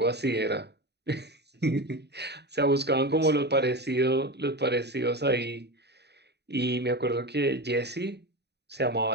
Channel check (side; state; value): left; late; 0.49 ms